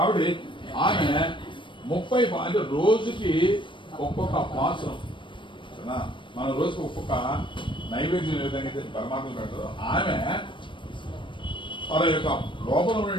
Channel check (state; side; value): late; right; 0.24 ms